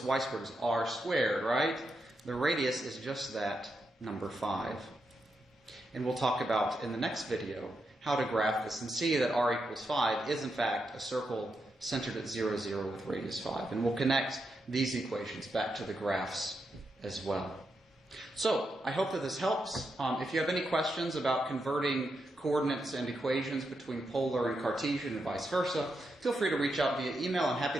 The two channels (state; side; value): normal; both; correlation 0.84